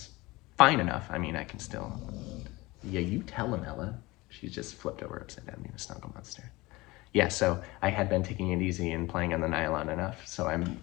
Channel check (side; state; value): right; quieter; 21.5 dB